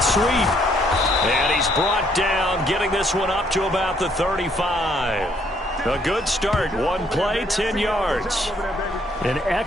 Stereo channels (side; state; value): both; normal; correlation 0.68